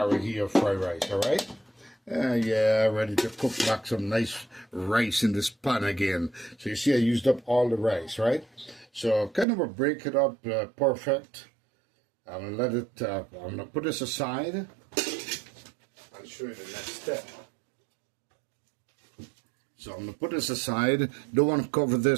or fried rice, all right? Yeah, ready to cook back some nice rice in this pan again. So you see I used up all the rice, right? So kind of break it up perfect. I'm going to put this aside. I'll show you the next step. So I'm going to put this aside. Don't want to cover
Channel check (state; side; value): drops out; left; at 9.5 s